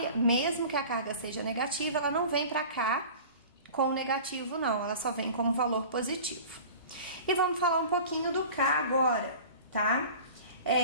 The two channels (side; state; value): both; inverted; correlation -0.40